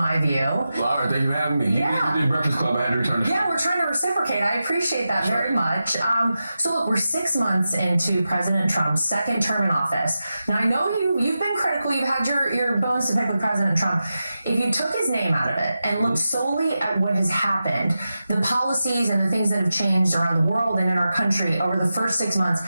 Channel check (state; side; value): inverted; both; correlation -0.91